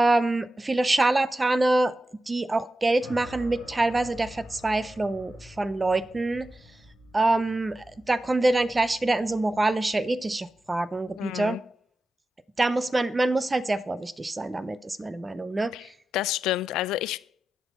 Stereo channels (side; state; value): both; normal; correlation 0.92